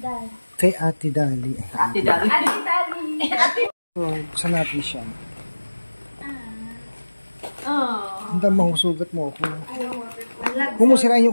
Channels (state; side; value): inverted; both; correlation -1.00